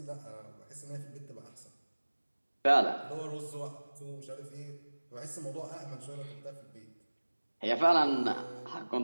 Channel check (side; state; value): both; inverted; correlation -1.00